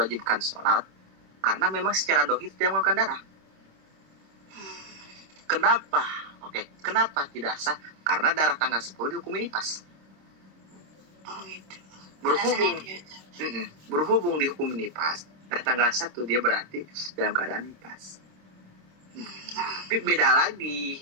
sholat? Karena memang secara dohir tidak mengeluarkan darah. Kenapa? Kenapa tidak sah? Karena darah tanggal 10 dihukumi nifas. Oh gitu. Berhubung, Alasannya itu. berhubung dihukum nifas, dari tanggal 1 dia berarti dalam keadaan nifas. Tapi beda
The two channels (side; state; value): left; late; 26 ms